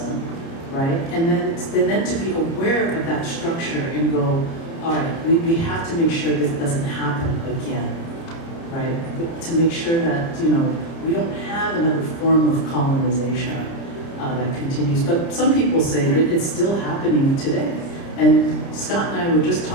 right? And then to be aware of that structure and go, all right, we have to make sure this doesn't happen again, right? To make sure that, we don't have another form of colonization that continues. But some people say that it's still happening today. And Scott and I were just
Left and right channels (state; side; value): late; right; 30 ms